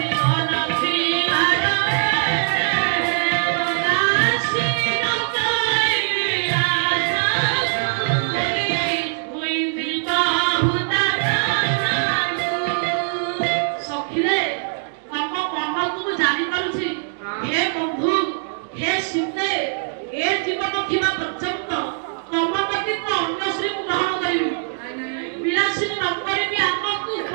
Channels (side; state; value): left; silent; digital silence